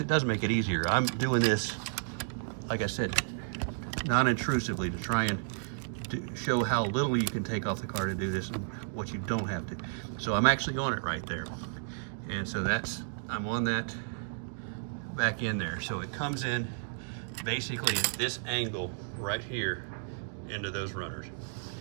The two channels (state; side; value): silent; left; digital silence